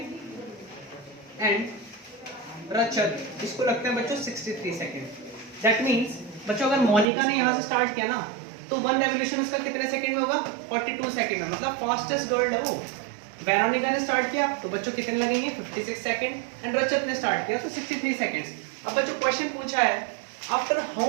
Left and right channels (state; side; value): drops out; left; at 7.1 s